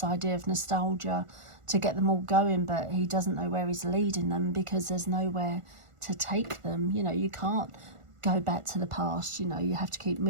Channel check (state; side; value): late; left; 1.4 ms